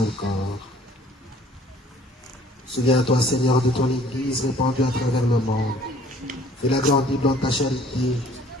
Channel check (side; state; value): both; normal; correlation 0.55